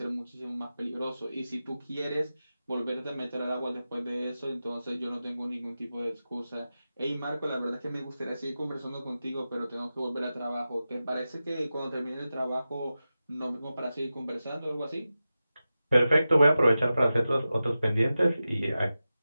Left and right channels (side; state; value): both; inverted; correlation -0.94